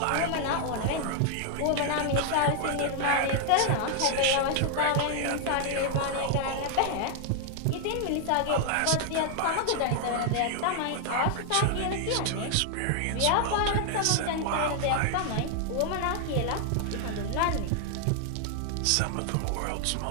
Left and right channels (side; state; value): both; different; correlation 0.00